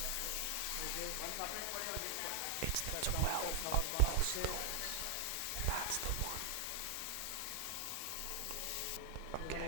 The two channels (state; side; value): different; both; correlation 0.00